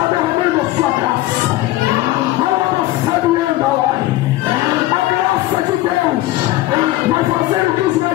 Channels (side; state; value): right; quieter; 16.4 dB